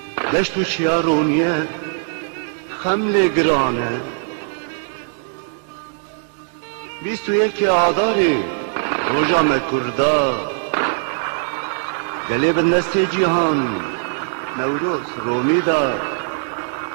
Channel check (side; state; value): left; silent; digital silence